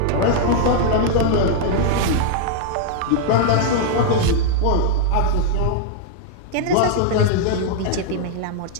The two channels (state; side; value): different; both; correlation 0.00